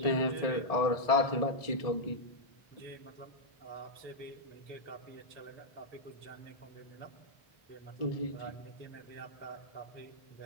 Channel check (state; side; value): late; right; 1.7 ms